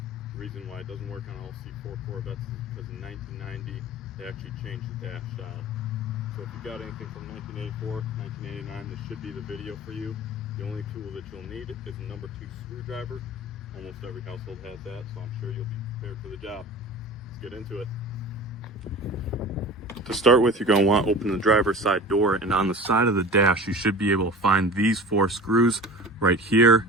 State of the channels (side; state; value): both; normal; correlation 0.36